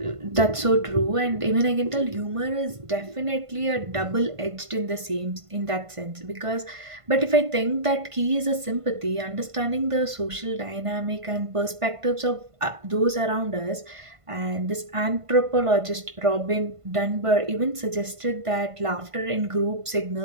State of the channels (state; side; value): late; left; 1.5 ms